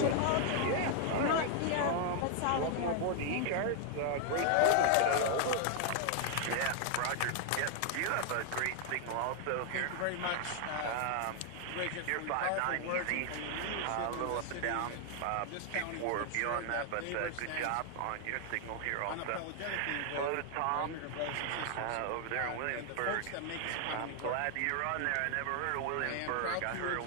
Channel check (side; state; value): both; different; correlation 0.00